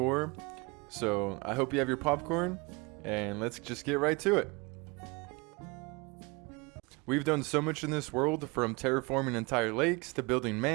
so I hope you have your popcorn, and let's just get right to it. We've done so much in this world, from terraforming entire lakes, to building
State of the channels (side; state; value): left; quieter; 26.6 dB